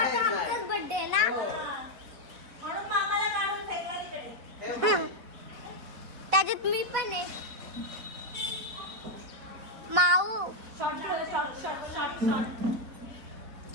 आमचाच बर्थडे आहे ना. म्हणून मामाला काढून फेकला तिकडे. त्याच्यात मी पण आहे. माऊ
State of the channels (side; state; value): left; late; 4.0 ms